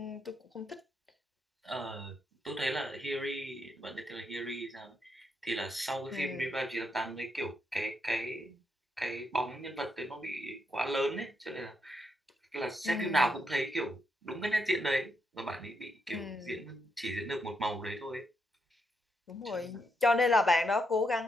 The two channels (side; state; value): both; normal; correlation 0.79